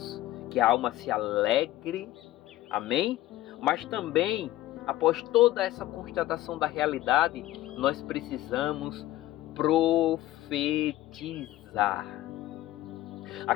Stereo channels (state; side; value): quieter; right; 15.4 dB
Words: que a alma se alegre, Amém? Mas também, após toda essa constatação da realidade, nós precisamos profetizar.